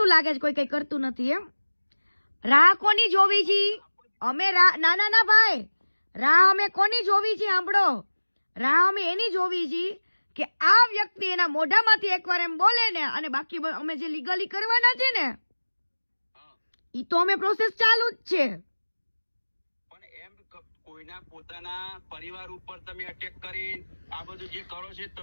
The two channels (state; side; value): inverted; both; correlation -1.00